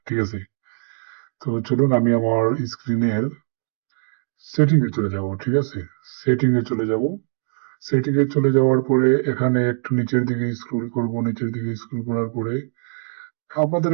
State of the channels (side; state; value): left; silent; digital silence